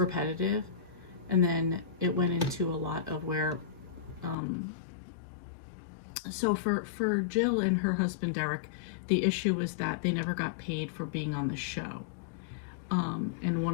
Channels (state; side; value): drops out; right; at 4.4 s